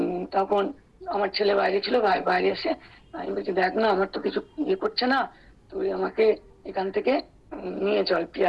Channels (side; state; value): both; identical; correlation 1.00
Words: তখন আমার ছেলে বাইরে ছিল, বাইরে এসে আমি বলছি দেখ না আমার তো কিছু ইয়ে করছে না, তুই আমাকে এখান থেকে নিয়ে চল